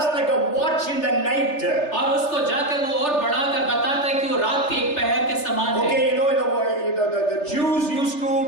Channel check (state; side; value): late; right; 3.3 ms